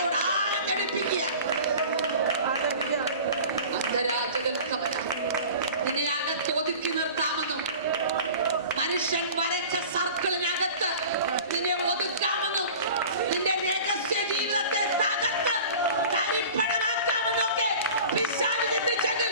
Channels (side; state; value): both; inverted; correlation -0.40